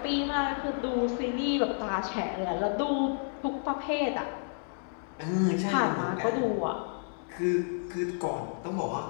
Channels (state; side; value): silent; right; digital silence